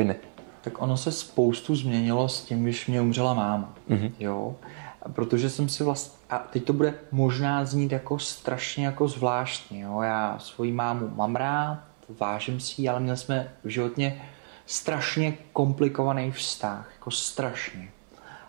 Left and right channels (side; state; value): left; silent; 59 dB below the other